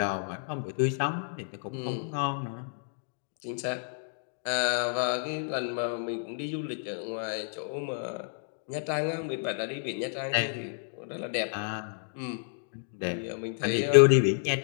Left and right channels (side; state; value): right; silent; digital silence